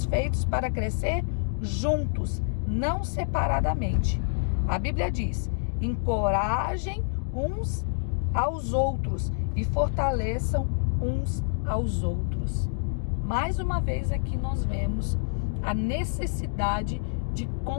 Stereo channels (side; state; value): right; silent; digital silence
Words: feitos para crescer juntos, não separadamente. A Bíblia diz: encorajem uns aos outros e fortaleçam uns aos outros. Mais uma vez aqui nós vemos a necessidade de